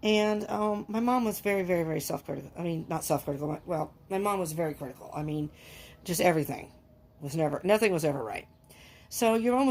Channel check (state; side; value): identical; both; correlation 1.00